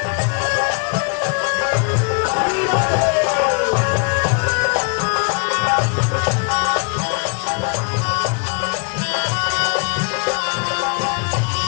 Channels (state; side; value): quieter; right; 36.1 dB